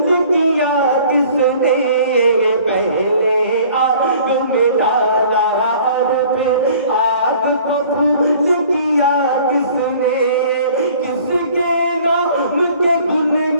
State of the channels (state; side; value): inverted; both; correlation -0.52